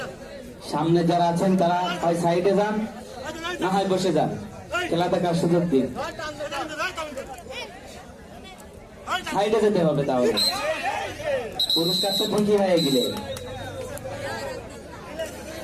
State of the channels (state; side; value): identical; both; correlation 1.00